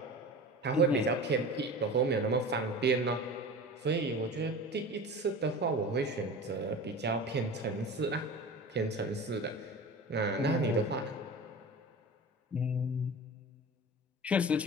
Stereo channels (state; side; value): normal; both; correlation 0.34